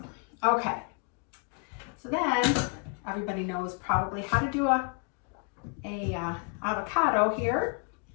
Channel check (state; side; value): quieter; right; 36.0 dB